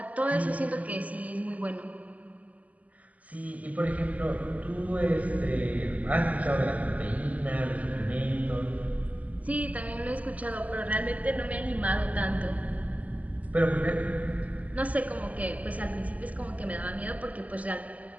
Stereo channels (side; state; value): left; late; 0.073 ms